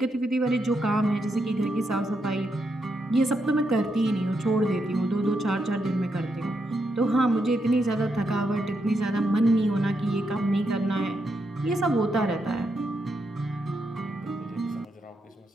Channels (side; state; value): both; normal; correlation 0.81